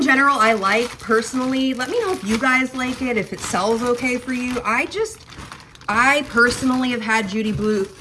general, I like personally. Let me know if you guys like it, if it sells okay for you. I personally have had Judy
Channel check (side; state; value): both; identical; correlation 1.00